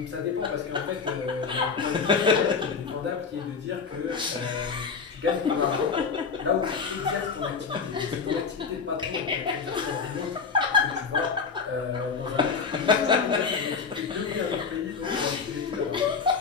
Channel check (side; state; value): right; quieter; 5.5 dB